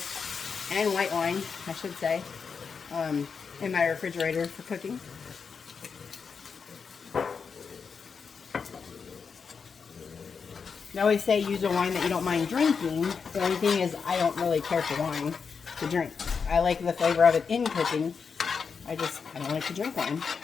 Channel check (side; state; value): right; quieter; 5.8 dB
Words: and white wine, I should say, in my refrigerator for cooking. They always say use a wine that you don't mind drinking. The only thing is I don't really care for wine to drink. I like the flavor of it in cooking. I don't like to drink wine.